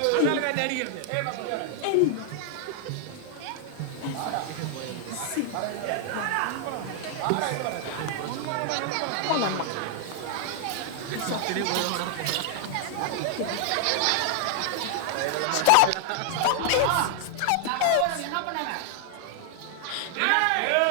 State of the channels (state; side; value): different; both; correlation 0.00